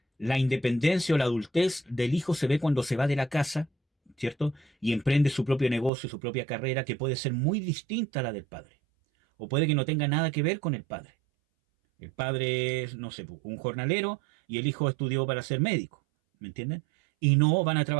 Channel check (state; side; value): drops out; left; at 5.9 s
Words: la independencia o la adultez del hijo se ve cuando se va de la casa, ¿cierto? Y emprende su propio negocio, su propia carrera, que puede ser muy distinta a la del padre. O puede que no tenga nada que ver con el padre. El padre es, no sé, un jornalero y el hijo estudió para ser médico, ¿me entienden? Y no van a